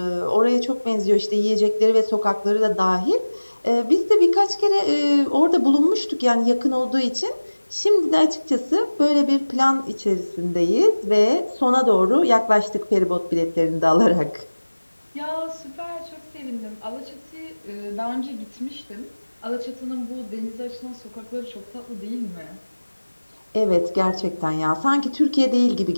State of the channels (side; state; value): both; inverted; correlation -1.00